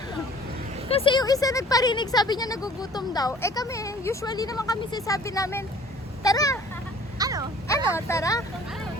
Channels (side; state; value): both; normal; correlation 0.51